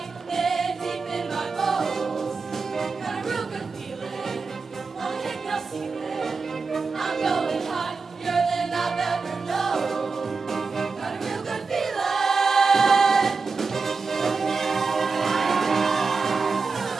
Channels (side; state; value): left; quieter; 4.6 dB